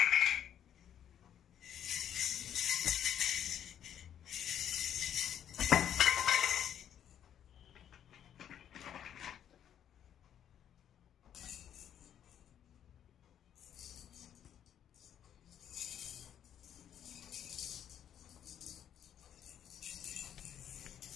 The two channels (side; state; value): right; quieter; 9.7 dB